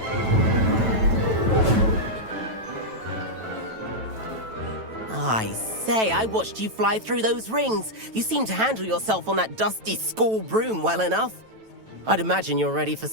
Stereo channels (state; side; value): late; left; 9.1 ms